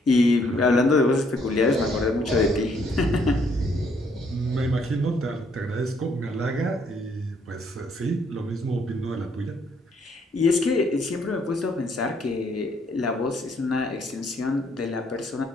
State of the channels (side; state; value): both; normal; correlation 0.68